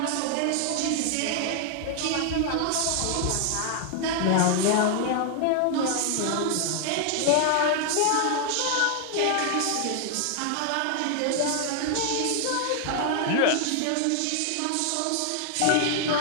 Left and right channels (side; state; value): both; different; correlation 0.00